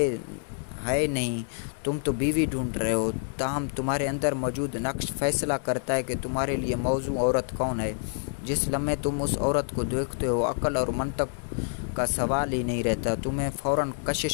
नहीं, तुम तो बीवी ढूंढ रहे हो। ताहम तुम्हारे अंदर मौजूद नक्श फैसला करता है कि तुम्हारे लिए मौजू औरत कौन है। जिस लम्हे तुम उस औरत को देखते हो, अक्ल और मंतक का सवाल ही नहीं रहता, तुम्हें फ़ौरन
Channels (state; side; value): silent; right; digital silence